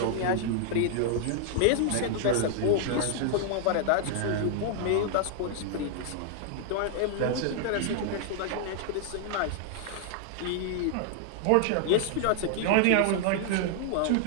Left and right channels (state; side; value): different; both; correlation 0.00